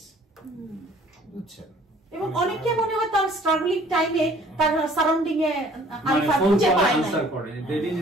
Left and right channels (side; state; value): both; normal; correlation 0.55